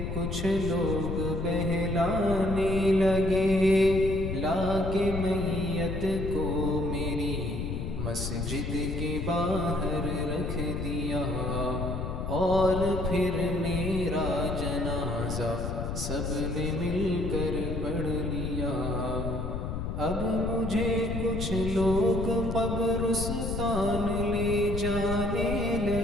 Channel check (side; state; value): left; noise; rumble, 4 dB below the sound